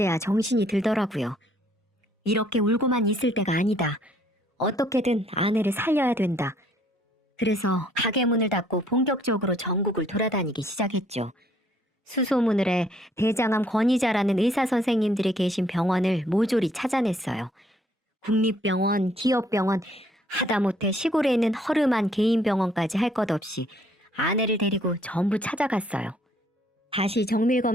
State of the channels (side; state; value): both; normal; correlation 0.64